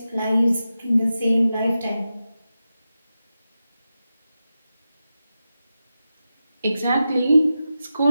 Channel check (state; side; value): inverted; both; correlation -0.91